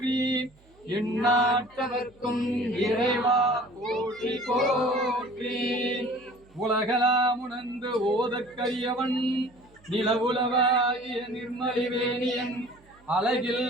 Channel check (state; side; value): noise; right; hum, 29 dB below the sound